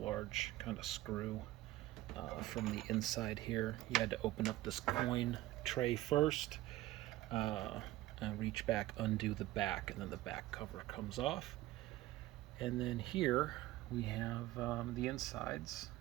kind of screw from the inside here. You had to open up this coin tray first, and reach back, undo the back, and then the back cover comes off. And then here we have the insides.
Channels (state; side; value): quieter; left; 16.4 dB